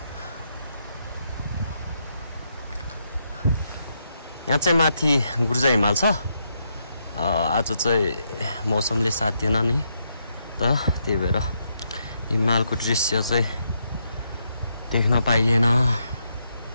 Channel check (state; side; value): inverted; both; correlation -0.79